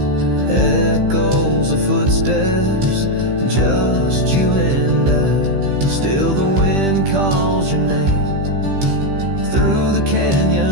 echoes of footsteps, just you and I. Still the wind calls your name through the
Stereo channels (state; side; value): late; left; 15 ms